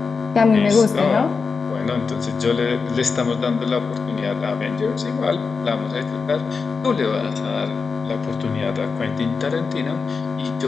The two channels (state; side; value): quieter; right; 5.0 dB